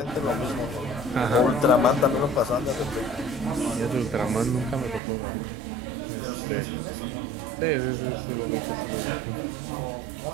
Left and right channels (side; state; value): left; drops out; at 5.0 s